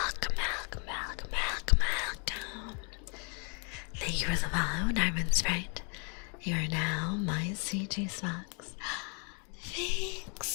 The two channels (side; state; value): right; quieter; 38.1 dB